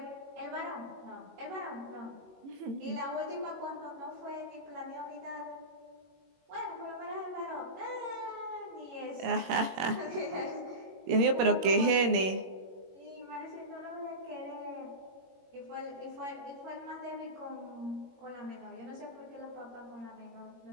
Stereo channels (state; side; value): late; left; 21 ms